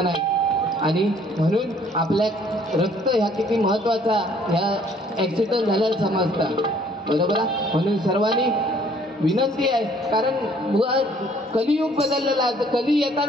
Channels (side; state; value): both; normal; correlation 0.60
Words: नाही. आणि म्हणून आपल्या रक्त ह्या किती महत्वाचा ह्या ऍक्सिडेंट झाल्याला समजतात, बरोबर आहे. म्हणून सर्वांनी विनंती आहे, कारण कलियुग बदललेला आहे. कली